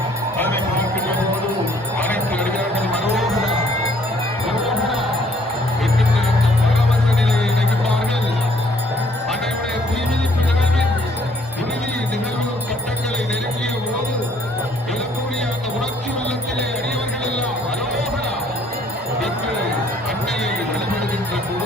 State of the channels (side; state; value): both; normal; correlation 0.62